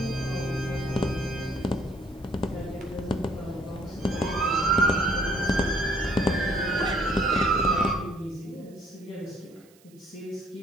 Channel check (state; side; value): noise; right; hiss, 29 dB below the sound